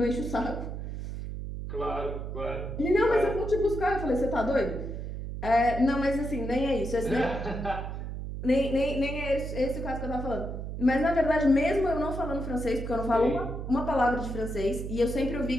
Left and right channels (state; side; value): noise; right; hum, 6 dB below the sound